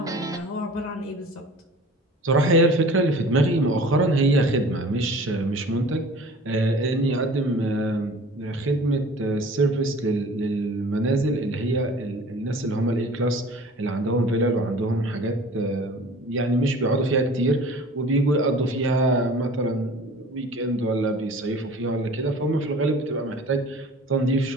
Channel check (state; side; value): normal; both; correlation 0.44